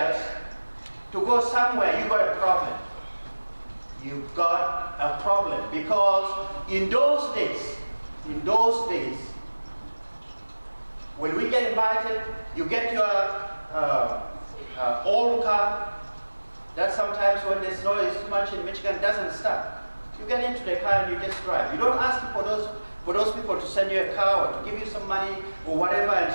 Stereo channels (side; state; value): both; inverted; correlation -1.00